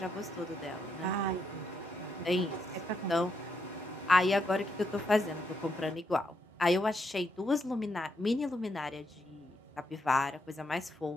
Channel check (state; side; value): normal; both; correlation 0.79